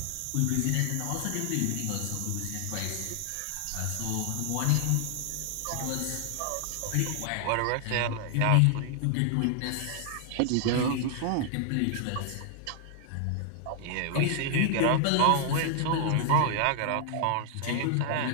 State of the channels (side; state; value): both; different; correlation 0.00